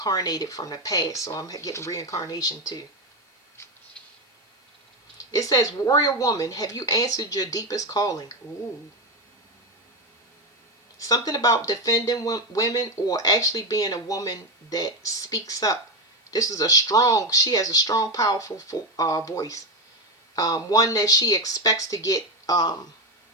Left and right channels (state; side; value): normal; both; correlation 0.11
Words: from the past. So I'm getting reincarnation too. It says, warrior woman, have you answered your deepest calling? Ooh. Something about defending women, or actually being a woman that speaks up. She has a strong, powerful voice. One that she expects to get